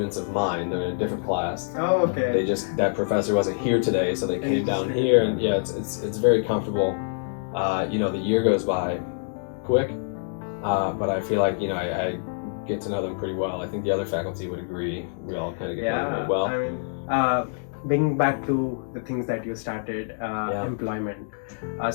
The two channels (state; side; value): silent; right; digital silence